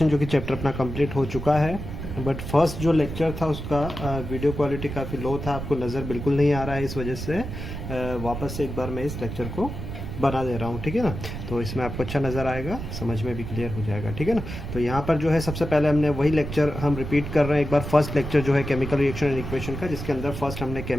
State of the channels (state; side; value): noise; right; rumble, 7 dB below the sound